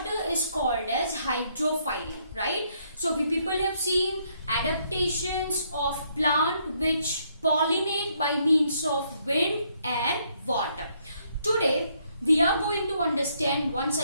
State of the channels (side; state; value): both; inverted; correlation -0.71